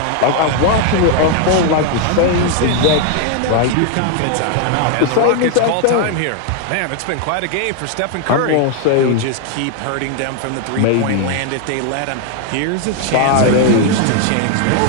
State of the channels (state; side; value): different; both; correlation 0.00